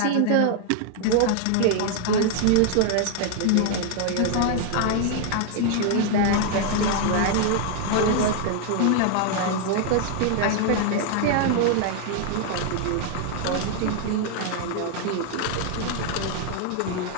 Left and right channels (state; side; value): different; both; correlation 0.00